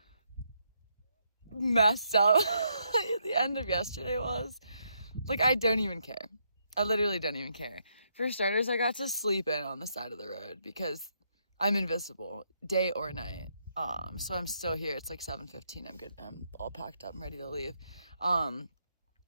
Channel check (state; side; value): inverted; both; correlation -0.76